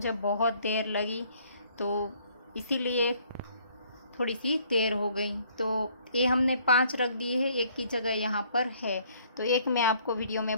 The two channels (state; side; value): inverted; both; correlation -0.62